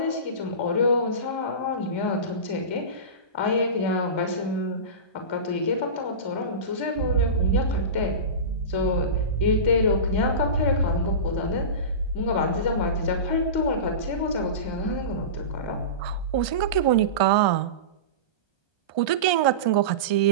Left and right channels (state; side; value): late; right; 1.2 ms